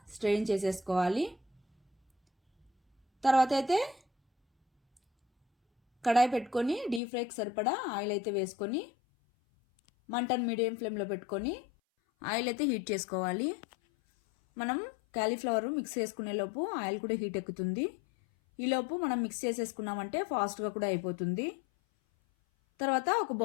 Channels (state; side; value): drops out; right; at 7.0 s